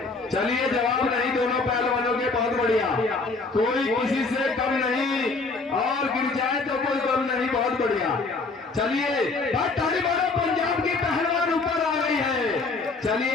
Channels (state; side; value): quieter; right; 3.8 dB